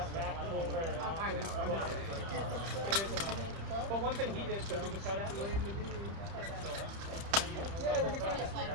back pull very often. But one thing he did, so he was cut out.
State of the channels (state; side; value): late; left; 30 ms